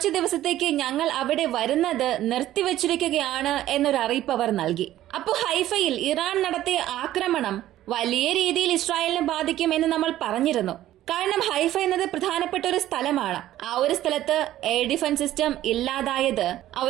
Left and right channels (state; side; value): quieter; left; 13.7 dB